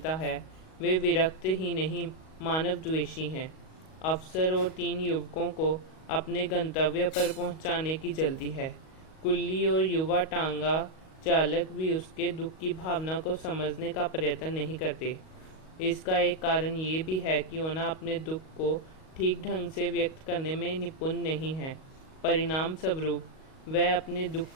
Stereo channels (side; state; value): right; late; 38 ms